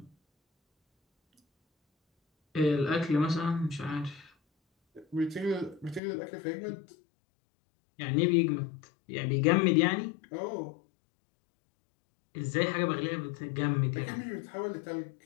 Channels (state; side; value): drops out; right; at 6.0 s